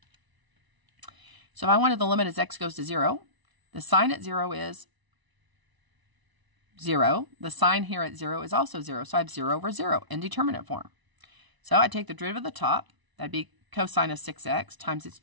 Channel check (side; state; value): left; late; 1.0 ms